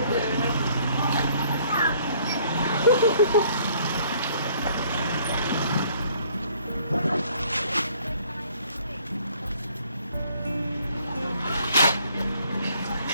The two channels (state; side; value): inverted; both; correlation -0.60